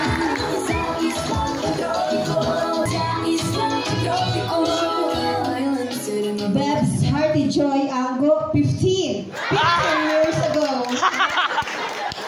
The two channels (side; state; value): both; identical; correlation 1.00